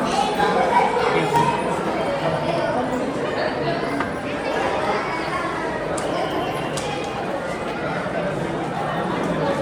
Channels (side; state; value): both; identical; correlation 1.00